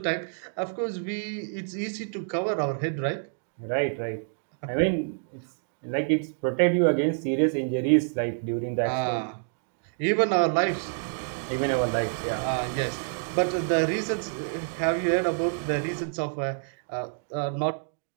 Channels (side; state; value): left; silent; digital silence